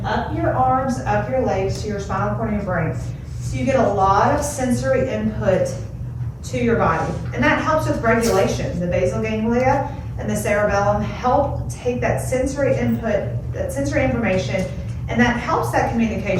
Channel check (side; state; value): both; identical; correlation 1.00